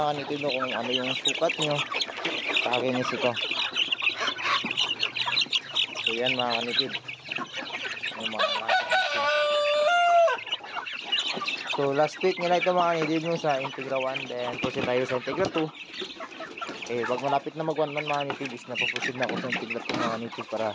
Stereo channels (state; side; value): identical; both; correlation 1.00